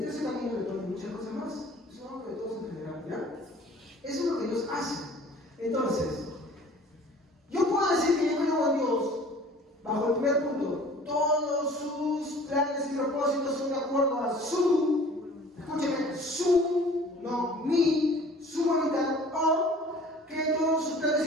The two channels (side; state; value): both; normal; correlation 0.49